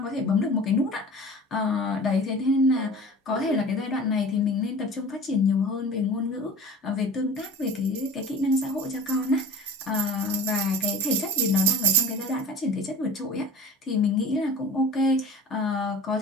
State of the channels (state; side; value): normal; both; correlation 0.39